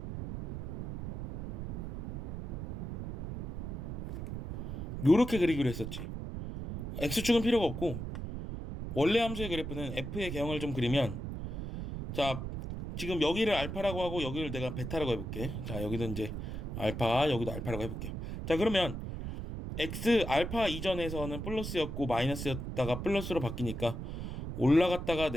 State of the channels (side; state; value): right; noise; rumble, 6 dB below the sound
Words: 요렇게 그리기로 했었지. x축은 필요가 없고 원래 함수의 그래프는 f의 개형을 좀 그리면 자, 지금 여기를 알파라고 하고 여기를 내가 베타라고 해볼게. 자, 여기는 이제 알파, 여기도 알파라고 해볼게요. 자, 그러면 x 알파 이전에서는 플러스였고 마이너스였다가 플러스로 바뀌니까 올라갔다가